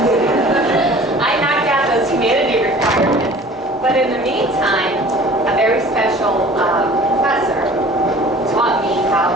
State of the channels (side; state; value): both; normal; correlation 0.46